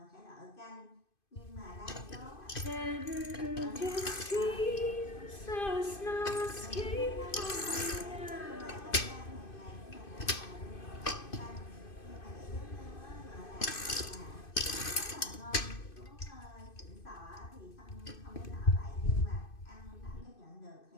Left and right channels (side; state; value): right; late; 2.5 ms